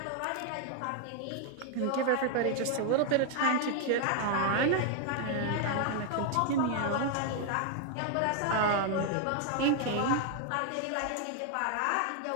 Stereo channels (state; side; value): different; both; correlation 0.00